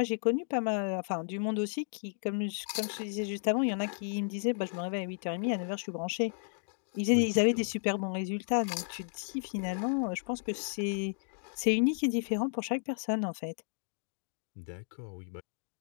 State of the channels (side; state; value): right; silent; digital silence